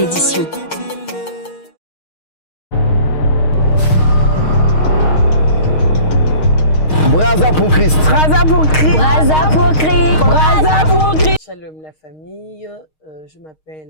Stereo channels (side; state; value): right; late; 6.4 ms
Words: Braza pour Christ. Braza pour Christ. Braza pour Christ. Braza pour Christ. Shalom la famille, je